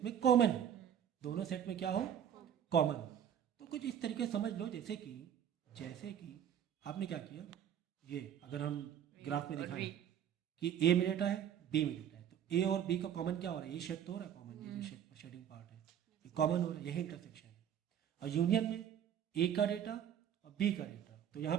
कॉमन है, दोनों सेट में क्या हो? कॉमन हो। तो कुछ इस तरीके से समझ लो, जैसे कि आपने क्या किया, ये अगर हम ग्राफ में दिखाएं कि ए में डेटा है, बी में डेटा है, तो ए और बी का कॉमन क्या हो रहा है? ये शेड तो हो रहा है कॉमन, ये जो शेडिंग पार्ट है ये कॉमन हो रहा है, यही इंटरसेक्शन है। और यूनियन में ए का डेटा और बी का डेटा, तो यहाँ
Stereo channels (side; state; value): left; quieter; 9.4 dB